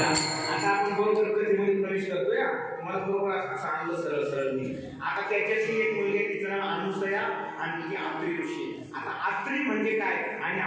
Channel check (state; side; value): identical; both; correlation 1.00